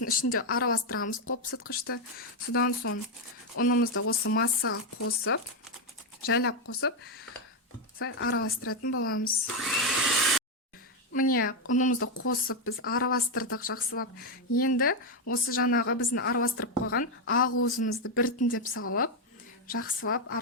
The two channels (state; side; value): normal; both; correlation 0.05